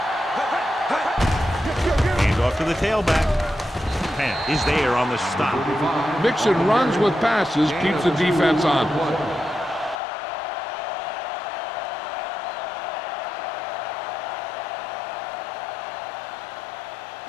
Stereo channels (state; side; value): drops out; right; at 10.0 s